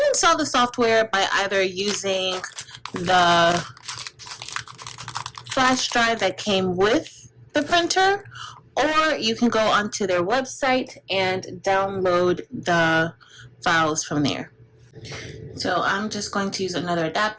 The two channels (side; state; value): both; identical; correlation 1.00